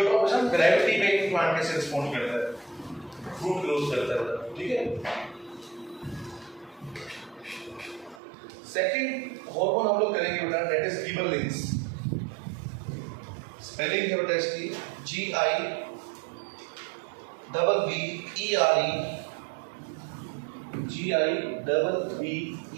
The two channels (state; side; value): drops out; left; at 8.2 s